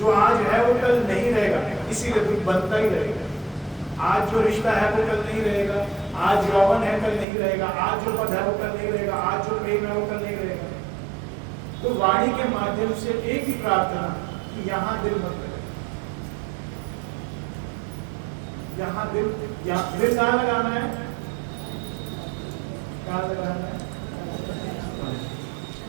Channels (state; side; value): drops out; left; at 7.2 s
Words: आज है वो कल नहीं रहेगा, इसीलिए दुख बनता ही रहेगा। आज जो रिश्ता है वो कल नहीं रहेगा, आज यौवन है कल नहीं रहेगा, आज जो पद है वो कल नहीं रहेगा, आज जो प्रेम है वो कल नहीं रहेगा। तो वाणी के माध्यम से एक ही प्रार्थना कि यहाँ दिल मत लगे, यहाँ दिल कहाँ लगाना है? कहाँ लगाना है?